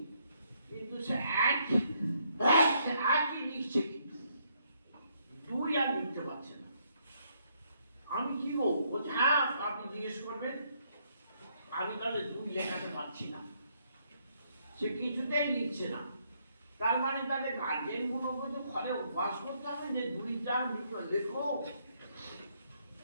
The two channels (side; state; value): both; inverted; correlation -0.72